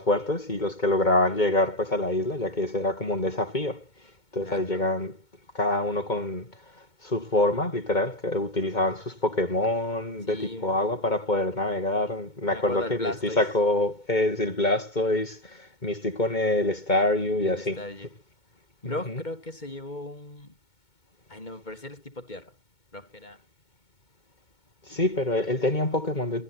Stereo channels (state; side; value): late; right; 2.2 ms